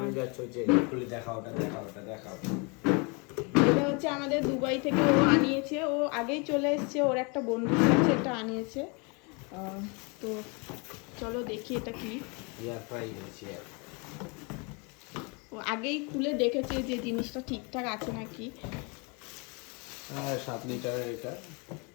যাচ্ছ যে খুলে দেখাও, ওটা দেখাও, ওটা দেখাও। এটা হচ্ছে আমাদের দুবাই থেকে ও আনিয়েছে, ও আগেই চলে এসেছে, ওর একটা বন্ধুর কাছে এটা আনিয়েছে। তো চলো দেখি এটা কি। এয়ার ফ্রাই হচ্ছে, ও আগেই খুলে দেখেছে যে জিনিসটা ঠিকঠাক আছে নাকি। 7 লিটারের এটা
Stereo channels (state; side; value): quieter; right; 31.7 dB